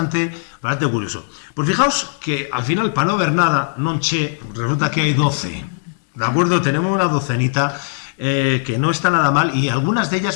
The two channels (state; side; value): silent; right; digital silence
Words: curioso. Pues fijaos que al final, para no ver nada, non che, resulta que hay 12. ¿De acuerdo? Tenemos una docenita que no está nada mal y algunas de